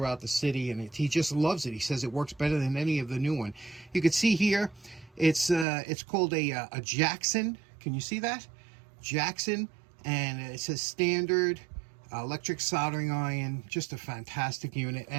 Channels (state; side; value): drops out; left; at 5.7 s